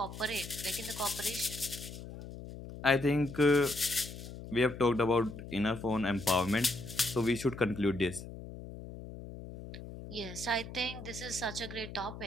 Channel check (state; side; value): noise; left; hum, 12 dB below the sound